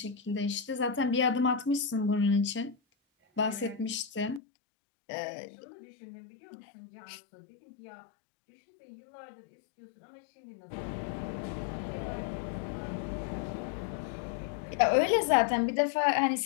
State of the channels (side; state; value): right; drops out; at 4.4 s